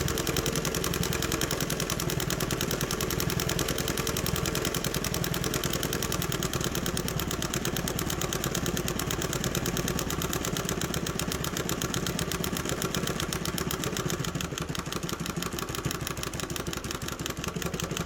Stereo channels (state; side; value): identical; both; correlation 1.00